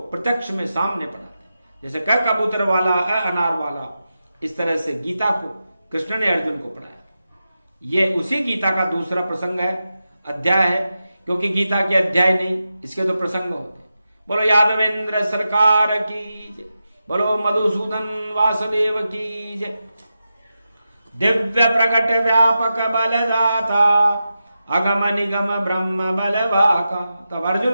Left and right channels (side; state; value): both; inverted; correlation -0.91